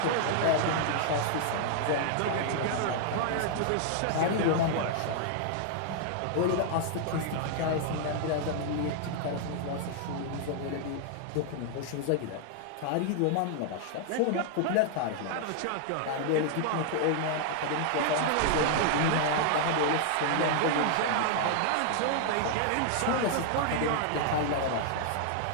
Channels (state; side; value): different; both; correlation 0.00